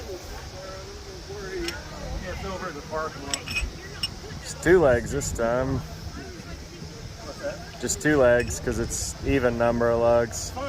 Yeah, it's over in the parking lot. Just 2 legs this time. What's that? Just 2 legs, because it's even number of lugs.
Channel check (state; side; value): identical; both; correlation 1.00